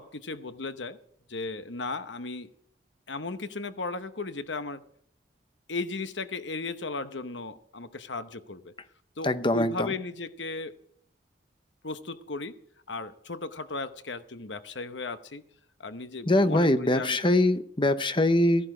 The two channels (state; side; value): normal; both; correlation 0.56